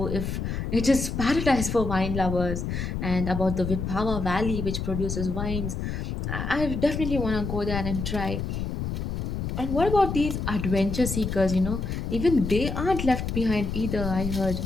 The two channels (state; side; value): noise; left; rumble, 3 dB below the sound